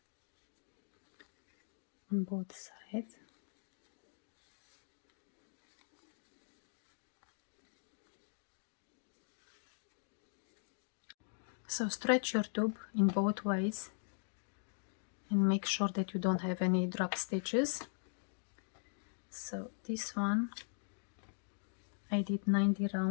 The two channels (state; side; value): silent; right; digital silence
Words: On both sides. So stretch your tube in both ways and make sure that you don't have any drop stitches. So this one I did 90